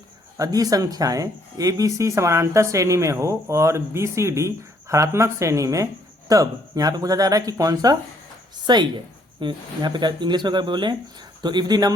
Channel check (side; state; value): both; normal; correlation 0.67